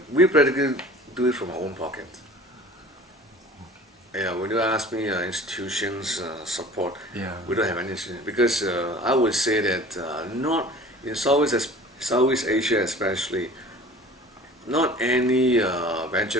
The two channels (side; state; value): both; normal; correlation 0.44